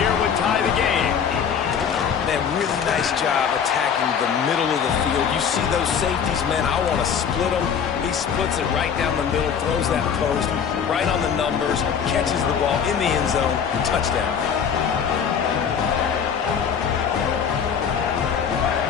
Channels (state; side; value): quieter; right; 7.4 dB